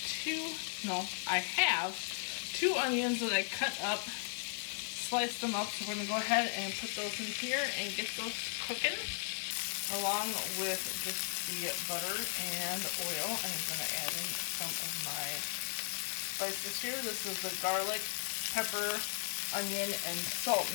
two onions that I cut up, sliced them up. So we're gonna go ahead and put those in here and get those cooking along with just the butter and oil. And I'm gonna add in some of my spices here. This is the garlic, pepper, onion, and salt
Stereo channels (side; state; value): right; silent; 54 dB below the other